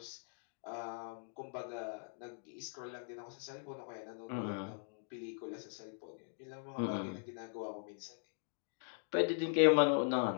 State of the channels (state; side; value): silent; right; digital silence